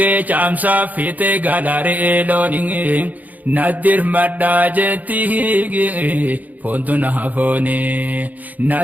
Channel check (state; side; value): late; left; 0.080 ms